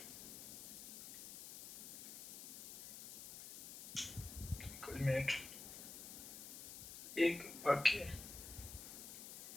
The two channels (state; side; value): noise; left; hiss, 10 dB below the sound